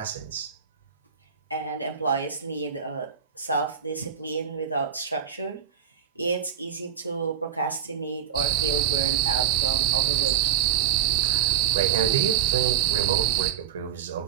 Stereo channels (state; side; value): quieter; left; 9.1 dB